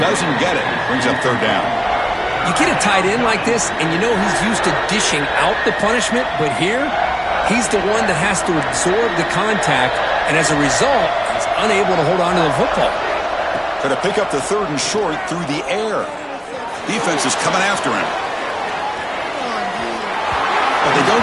get it. Brings up 3rd down. You get a tight end like this, and you know he's used to dishing out the punishment, but here, he's the one that has to absorb the contact, and as a result, he's unable to hold on to the football. Going to pick up the 3rd and short through the air. Defense is coming after him. But they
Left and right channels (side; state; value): both; identical; correlation 1.00